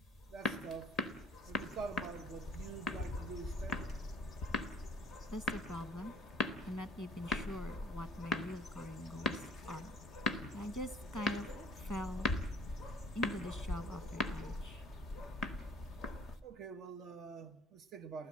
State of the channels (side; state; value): both; normal; correlation 0.50